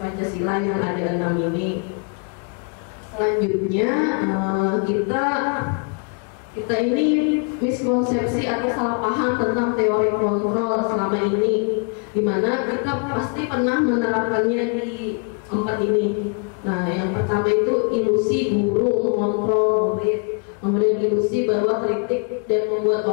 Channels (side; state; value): right; quieter; 36.9 dB